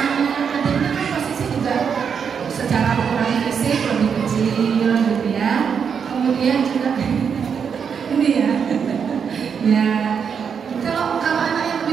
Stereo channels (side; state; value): left; quieter; 6.8 dB